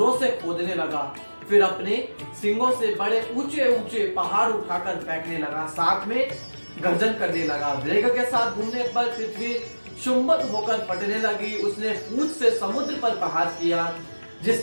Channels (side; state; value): both; inverted; correlation -1.00